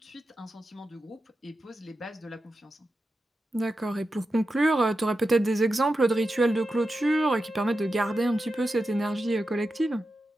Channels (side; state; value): both; normal; correlation 0.90